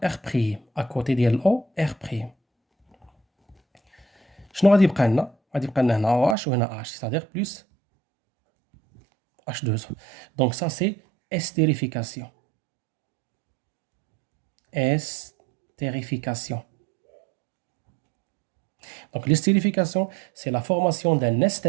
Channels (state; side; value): drops out; left; at 6.4 s